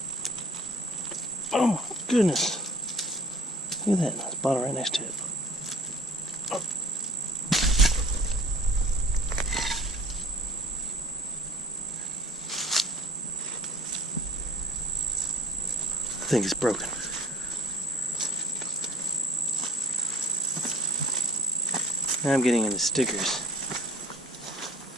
Oh my goodness. Look at that. There's a bottle right next to it. Oh. I think it's broken. Now I'm getting into stickers.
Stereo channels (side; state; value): both; normal; correlation 0.51